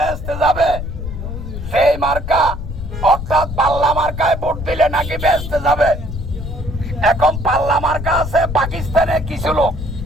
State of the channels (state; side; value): noise; left; rumble, 7 dB below the sound